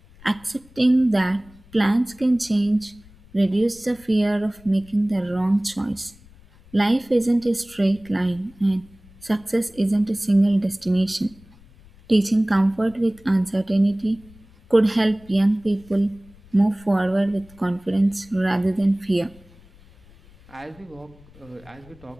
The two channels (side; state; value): left; noise; rumble, 26 dB below the sound